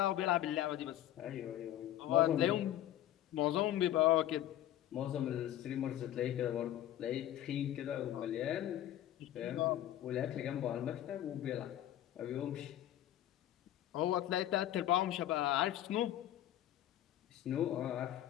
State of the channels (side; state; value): right; quieter; 12.6 dB